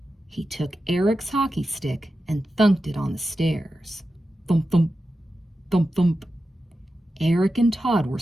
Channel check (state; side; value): normal; both; correlation 0.91